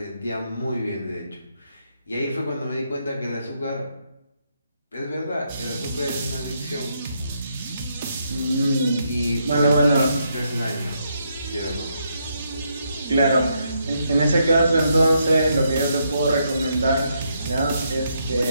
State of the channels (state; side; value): inverted; both; correlation -0.77